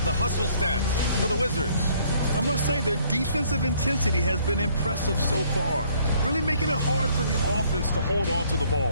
the hustle stats for the Wizards. I must say their defensive intensity has been impressive so far, really making it hard for the offense to hold on to the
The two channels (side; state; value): both; inverted; correlation -0.62